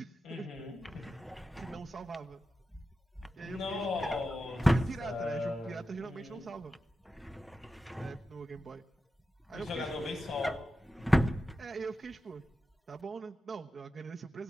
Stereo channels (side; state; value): both; normal; correlation 0.91